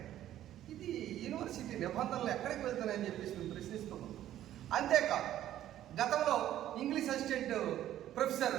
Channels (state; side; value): quieter; left; 12.4 dB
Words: ఇది యూనివర్సిటీ నిబంధనలు ఎక్కడికి వెళ్తున్నాయని చెప్పేసి మేము ప్రశ్నిస్తున్నాం. అంతేకాదు, గతంలో ఇంగ్లీష్ అసిస్టెంట్